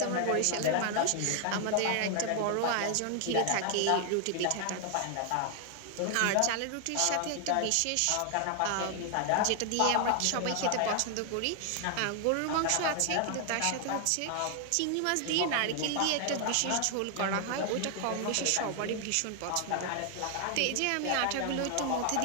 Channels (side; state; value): both; different; correlation 0.00